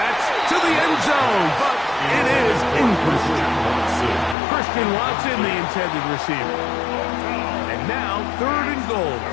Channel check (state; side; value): drops out; right; at 4.4 s